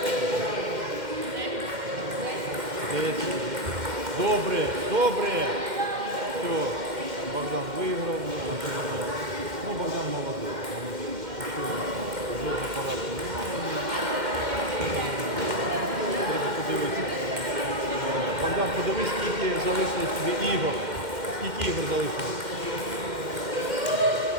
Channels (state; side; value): late; left; 2.1 ms